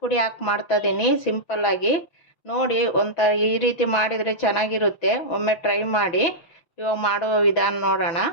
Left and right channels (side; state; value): right; late; 6.0 ms